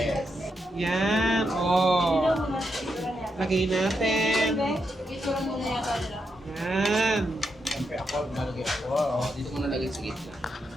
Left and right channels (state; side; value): normal; both; correlation 0.83